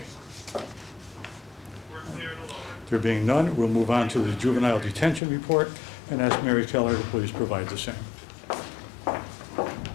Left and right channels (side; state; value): right; drops out; at 5.2 s